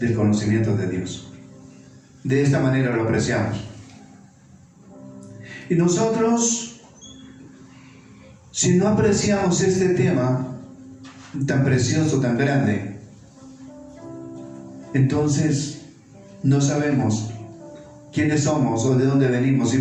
conocimiento de Dios. De esta manera lo apreciamos. Y nosotros, si no apreciamos este tema tan precioso, tan grande, entonces no sabemos quiénes somos o de dónde venimos y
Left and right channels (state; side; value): identical; both; correlation 1.00